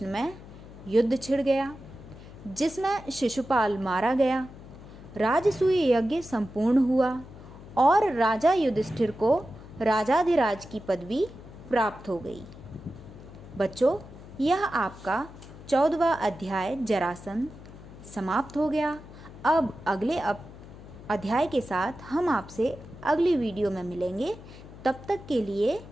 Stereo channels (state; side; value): noise; left; hum, 17 dB below the sound